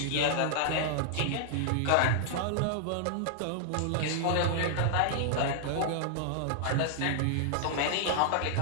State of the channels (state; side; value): different; both; correlation -0.01